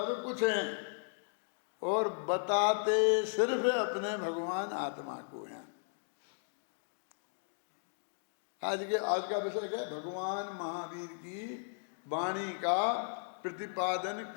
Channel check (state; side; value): silent; right; digital silence